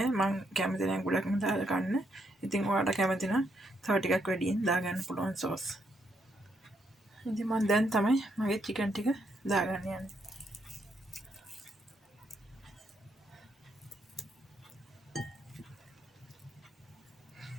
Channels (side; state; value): both; normal; correlation 0.76